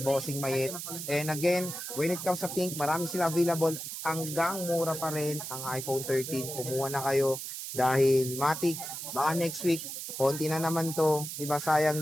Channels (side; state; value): right; noise; hiss, 7 dB below the sound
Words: Bossing Mayet. And again, when it comes sa pink, marami sila available. Hanggang mura pa rin ang iPhone 13. Kumuha na kayo dahil matik, baka next week, konti na naman to. Di ba sayang